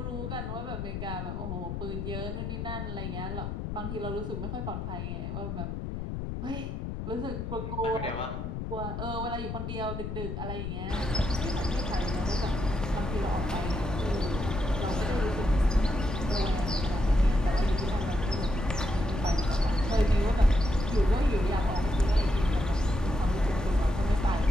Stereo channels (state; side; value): noise; left; rumble, 5 dB below the sound